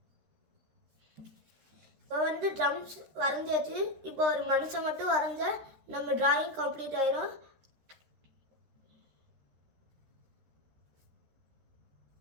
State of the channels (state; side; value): late; left; 13 ms